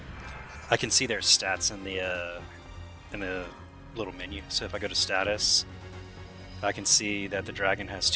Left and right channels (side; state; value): both; identical; correlation 1.00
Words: I can see their stats in the little menu. So if I go to status, I can see that the dragon has